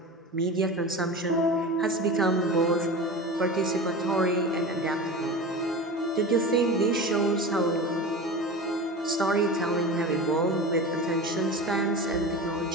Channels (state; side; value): normal; both; correlation 0.31